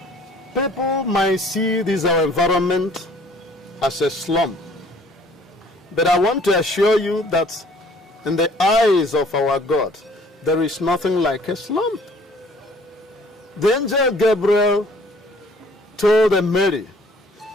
people might see this our environment as a slum, but I want to assure you that in the eyes of our God, there is nothing like a slum. The angel Gabriel told Mary,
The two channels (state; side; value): normal; both; correlation 0.56